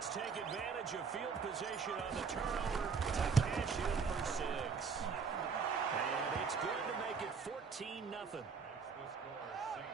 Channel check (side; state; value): left; quieter; 5.5 dB